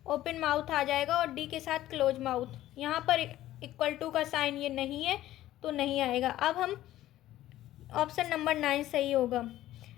ओपन माउथ आ जाएगा और डी के साथ क्लोज माउथ। यहाँ पर इक्वल टू का साइन ये नहीं है, तो नहीं आएगा। अब हम ऑप्शन नंबर 9 सही होगा।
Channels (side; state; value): right; quieter; 14.2 dB